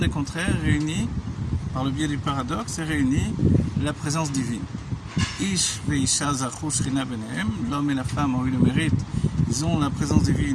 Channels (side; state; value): both; identical; correlation 1.00